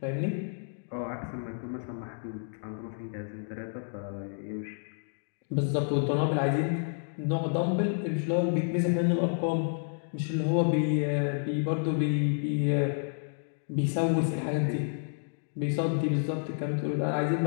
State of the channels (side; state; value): right; silent; digital silence